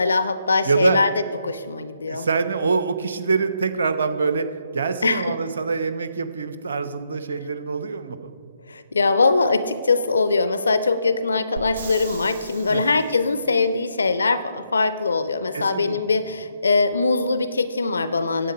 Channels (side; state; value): both; inverted; correlation -0.79